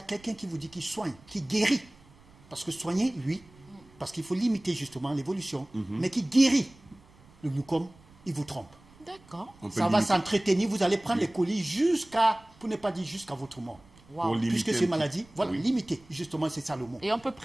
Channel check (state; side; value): noise; right; rumble, 26 dB below the sound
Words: quelqu'un qui vous dit qu'il soigne, qui guérit, parce que soigner, oui, parce qu'il faut limiter justement l'évolution, mais qui guérit le glaucome, il vous trompe. D'accord. On peut Ça va limiter. s'entretenir, vous allez prendre les colis jusqu'à, pour ne pas dire jusqu'à votre mort. Pour limiter Puisque un ces petit- maladies, voilà, Oui. limiter, justement, c'est ça le mot. Et on peut